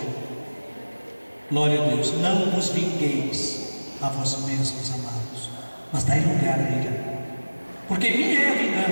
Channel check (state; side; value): inverted; both; correlation -1.00